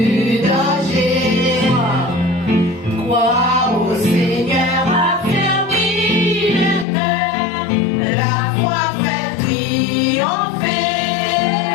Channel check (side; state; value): right; drops out; at 6.9 s